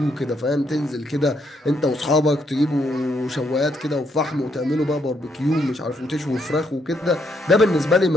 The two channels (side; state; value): both; normal; correlation 0.75